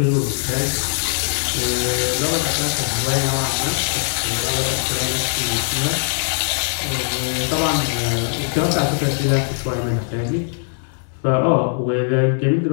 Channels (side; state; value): right; silent; digital silence